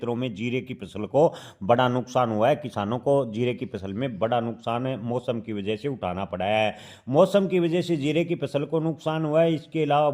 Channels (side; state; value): both; identical; correlation 1.00